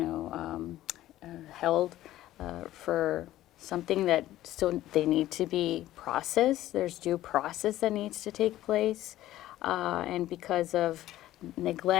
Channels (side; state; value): right; quieter; 14.5 dB